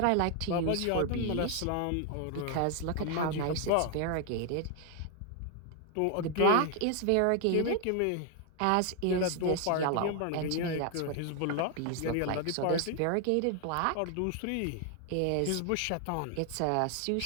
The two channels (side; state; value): both; different; correlation 0.01